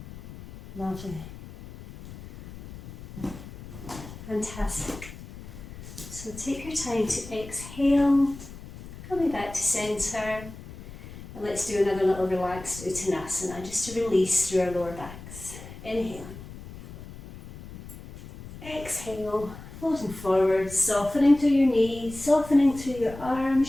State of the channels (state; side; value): noise; left; rumble, 15 dB below the sound